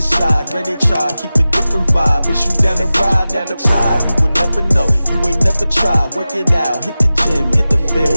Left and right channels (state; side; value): inverted; both; correlation -0.95